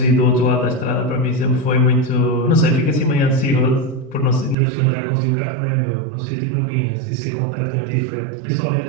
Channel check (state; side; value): drops out; left; at 4.5 s